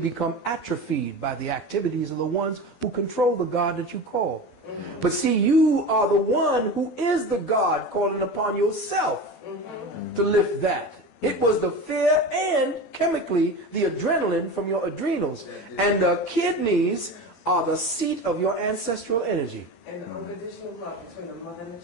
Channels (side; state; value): right; late; 12 ms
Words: atrophied by the activities of the ones who control the God that you call. But see, you are the one who is the God calling upon yourself to lift that. It was the fear and, chemically, the adrenaline from your adrenals. And the kidneys are the seat of your ancestral energy. And the unconditional love between the mother and the